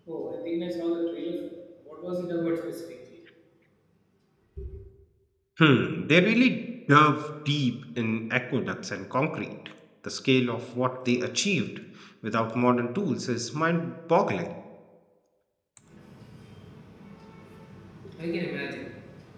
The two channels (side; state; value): both; identical; correlation 1.00